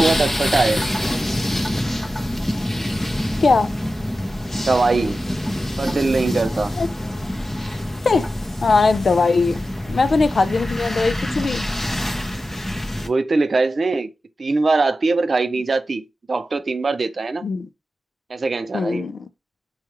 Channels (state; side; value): normal; both; correlation 0.92